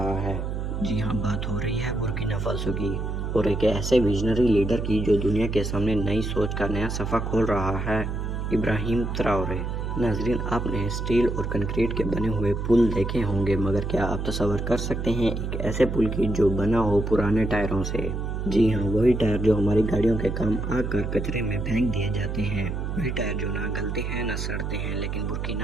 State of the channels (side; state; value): right; noise; hum, 3 dB below the sound